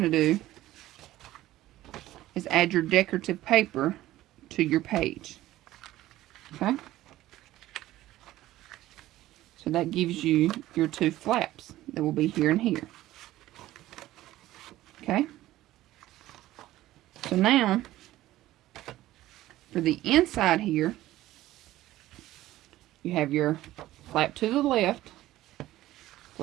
to do is add your decorative paper to your page. Okay, so that gives you your 2 flaps that will be here and here. Okay, So now, for the inside here, you have your flap to the left,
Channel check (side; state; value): left; quieter; 15.4 dB